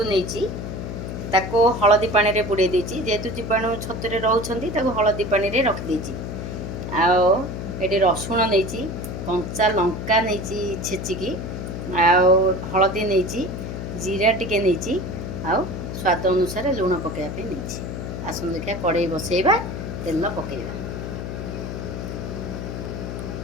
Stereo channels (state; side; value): noise; left; hum, 6 dB below the sound